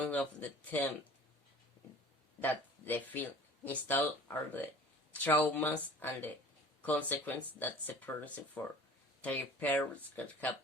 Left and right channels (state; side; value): normal; both; correlation 0.44